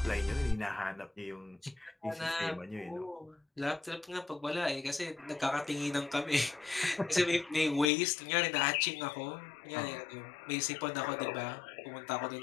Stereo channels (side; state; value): right; drops out; at 7.9 s